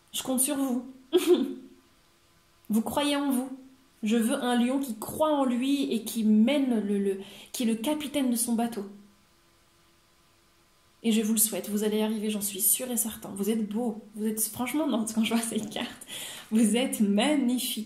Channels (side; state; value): both; identical; correlation 1.00